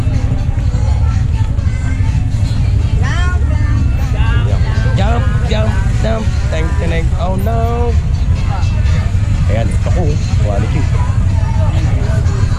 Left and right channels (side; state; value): both; identical; correlation 1.00